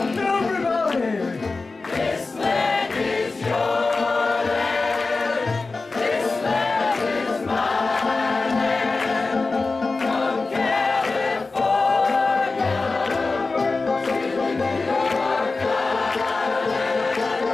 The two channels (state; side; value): quieter; right; 3.8 dB